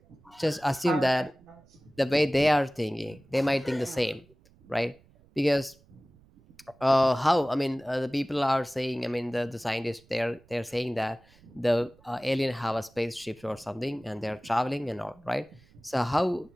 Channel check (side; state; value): right; noise; rumble, 29 dB below the sound